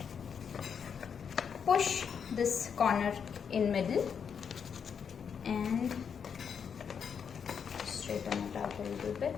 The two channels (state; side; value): quieter; right; 7.0 dB